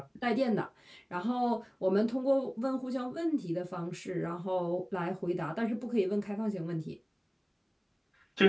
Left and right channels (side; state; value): both; identical; correlation 1.00